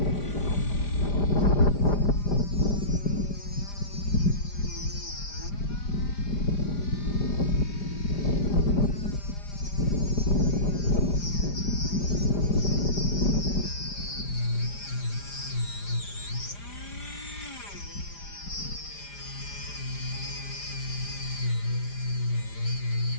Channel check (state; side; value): late; right; 5.0 ms